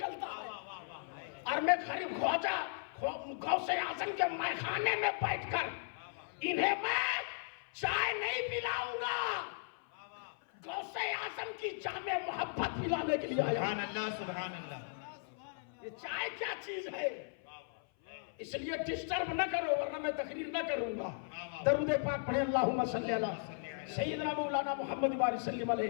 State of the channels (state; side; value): silent; right; 53 dB below the other